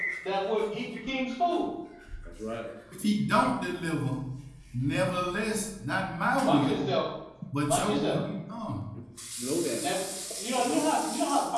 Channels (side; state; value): both; identical; correlation 1.00